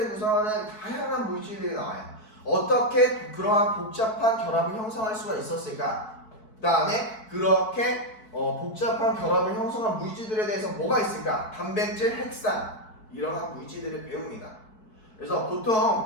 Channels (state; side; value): late; right; 4.6 ms